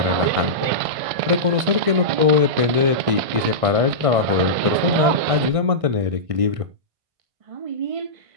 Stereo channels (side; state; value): left; late; 1.6 ms